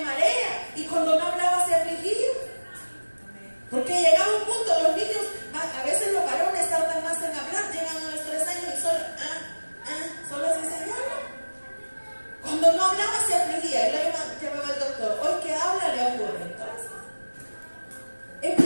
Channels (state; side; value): inverted; both; correlation -1.00